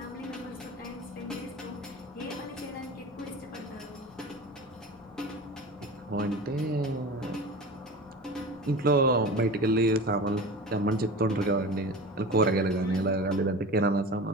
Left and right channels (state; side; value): normal; both; correlation 0.33